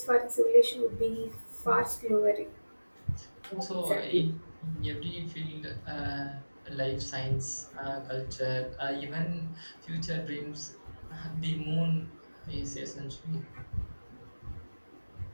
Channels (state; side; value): inverted; both; correlation -1.00